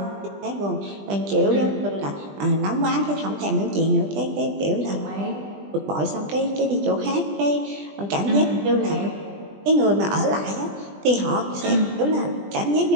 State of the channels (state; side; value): late; left; 20 ms